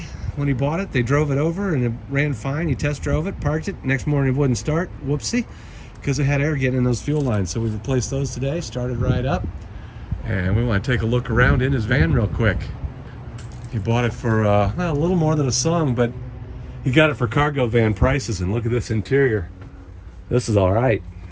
when he bought it. They drove it over and it ran fine. He test drove it, parked it. Next morning it wouldn't start. Whoopsie. Because it had air getting in those fuel lines. So we replaced those today, started right up. And we want to take a look around in his van real quick. He bought it for well, a little more than a song, but he got it for cargo van prices. And look at this interior. This is all right.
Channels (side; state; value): both; identical; correlation 1.00